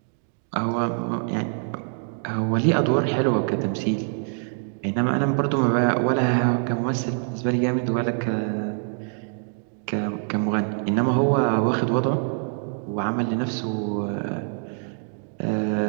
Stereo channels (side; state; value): left; silent; 55 dB below the other